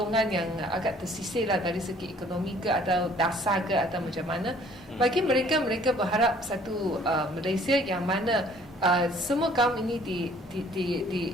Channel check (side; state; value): both; normal; correlation 0.57